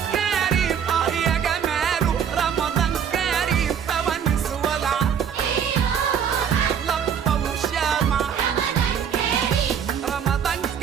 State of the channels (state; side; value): quieter; left; 7.9 dB